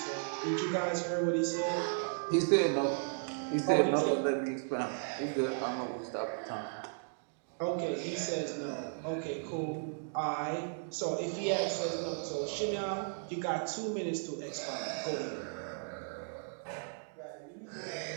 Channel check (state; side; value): silent; left; digital silence